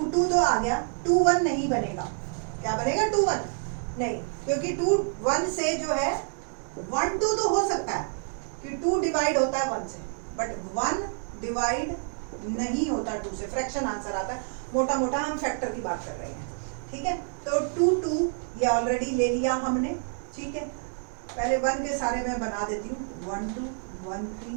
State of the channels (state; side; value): silent; left; 59 dB below the other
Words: 2 तो आ गया, 2 1 नहीं बनेगा। क्या बनेगा? 2 1 नहीं, क्योंकि 2 1 से जो है 1 2 तो हो सकता है कि 2 डिवाइड होता है 1 से, बट 1 डिवाइड नहीं होता 2 से, फ्रैक्शन आंसर आता है। मोटा मोटा हम फैक्टर की बात कर रहे हैं, ठीक है। तो 2 2 ये ऑलरेडी ले लिया हमने, ठीक है। पहले 1 के सारे मैं बना देती हूँ, 1 2 1 3